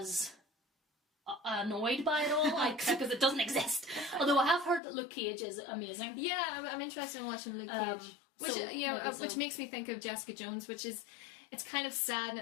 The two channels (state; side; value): drops out; right; at 4.8 s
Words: as annoyed by it all, because it doesn't exist. Although I have heard that Luke Cage is amazing. Yeah, I'm interested in watching Luke Cage. Which, so, you know, which makes me think of Jessica Jones, which is, it's kind of sad in